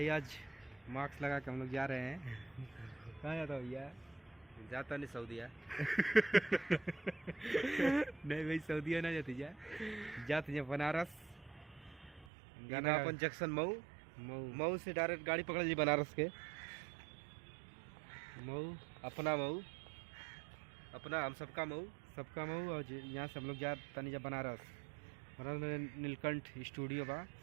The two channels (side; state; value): left; drops out; at 12.2 s